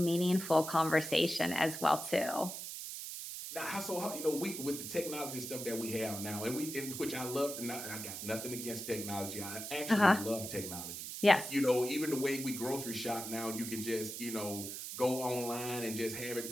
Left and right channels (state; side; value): noise; right; hiss, 7 dB below the sound